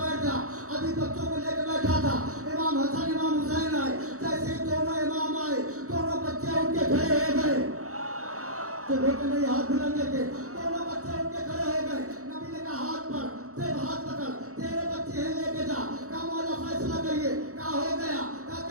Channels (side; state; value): left; late; 0.65 ms